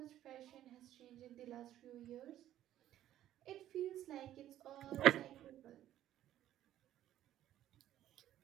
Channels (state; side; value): quieter; left; 12.5 dB